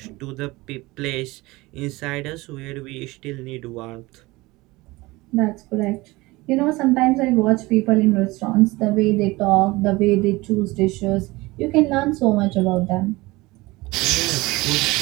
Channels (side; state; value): left; quieter; 21.3 dB